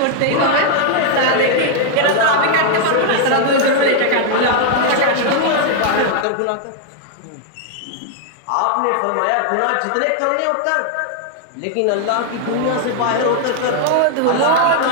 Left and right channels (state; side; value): different; both; correlation 0.00